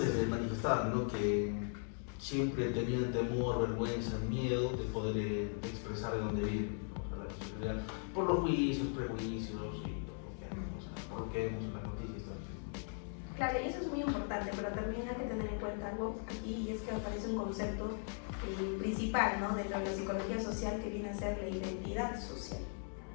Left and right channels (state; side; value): silent; right; 52 dB below the other